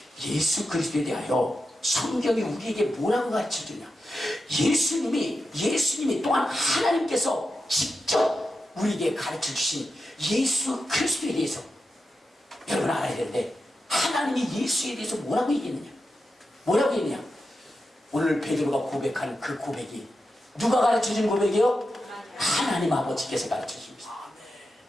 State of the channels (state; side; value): normal; both; correlation 0.89